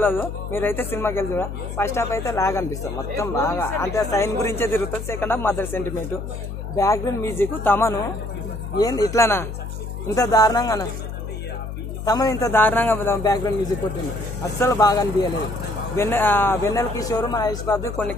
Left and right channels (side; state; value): left; noise; hum, 7 dB below the sound